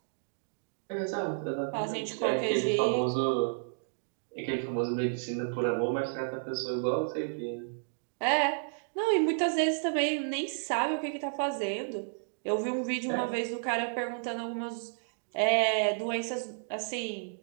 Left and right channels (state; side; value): silent; left; digital silence